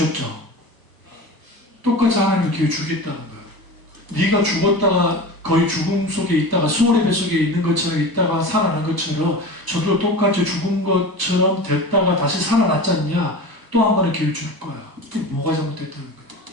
똑같이 하나님이 기회 주겠다는 거예요. 네가 죽었다가 거의 죽음 속에 있다가 수월의 뱃속에 있는 것처럼 있다가 살아난 것처럼 저도 똑같이 죽은 것처럼 됐다가 다시 살아났지 않냐? 또 한 번의 기회를 줄 거야. 그게 뭐가 잘못됐다는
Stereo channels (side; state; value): left; late; 1.0 ms